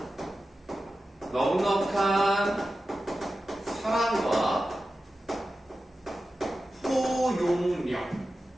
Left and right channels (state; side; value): normal; both; correlation 0.93